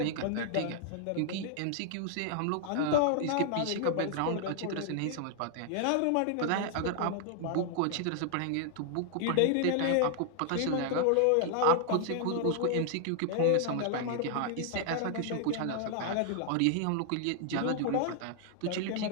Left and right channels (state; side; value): different; both; correlation 0.00